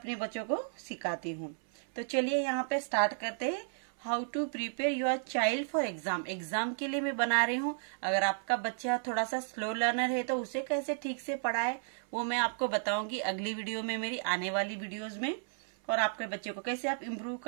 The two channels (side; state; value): left; silent; 56 dB below the other